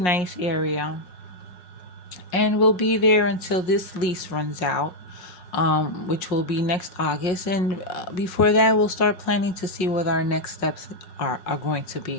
area. And we'll be there until this lease runs out, which will be next August. And before that, we'll start planning to see what our next steps are going to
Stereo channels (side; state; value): right; late; 5.5 ms